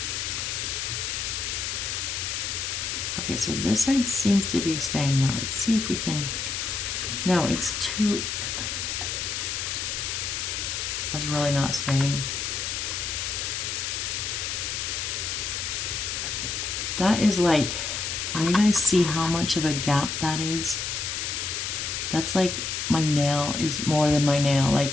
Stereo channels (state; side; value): noise; left; hiss, 2 dB below the sound